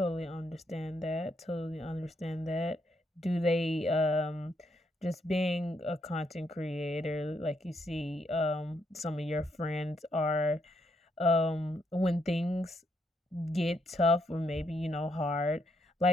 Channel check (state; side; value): normal; both; correlation 0.77